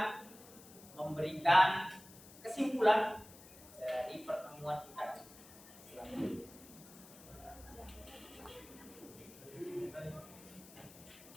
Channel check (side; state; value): left; noise; hiss, 19 dB below the sound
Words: memberikan kesimpulan dari pertemuan kita. Silakan.